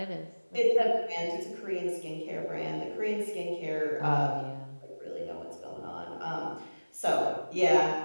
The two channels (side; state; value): both; inverted; correlation -1.00